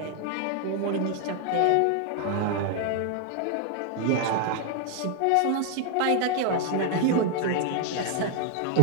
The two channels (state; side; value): different; both; correlation 0.00